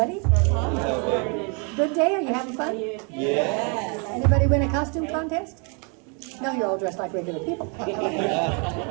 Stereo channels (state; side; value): quieter; left; 35.8 dB